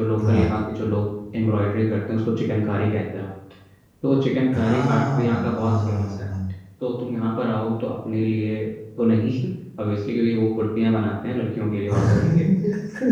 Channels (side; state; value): both; identical; correlation 1.00